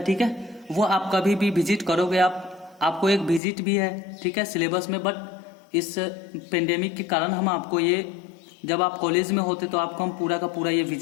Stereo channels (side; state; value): right; drops out; at 3.4 s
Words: ठीक है। वो आप कभी भी विजिट करोगे आप आपको एक विजिट भी है, ठीक है, सिलेबस में, बट इस पेंडेमिक के कारण हम आपको ये, जब आप कॉलेज में होते तो आपको हम पूरा का पूरा ये